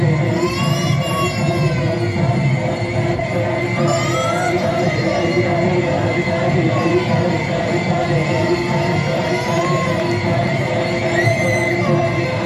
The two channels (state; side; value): identical; both; correlation 1.00